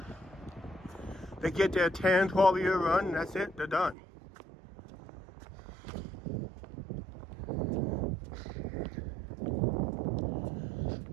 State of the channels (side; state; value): left; drops out; at 4.0 s